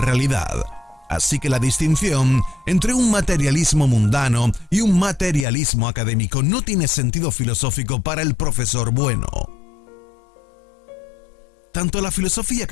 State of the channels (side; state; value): right; drops out; at 5.5 s